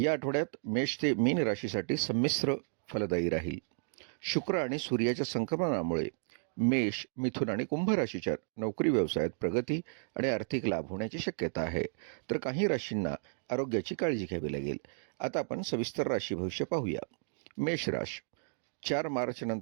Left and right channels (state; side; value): silent; left; digital silence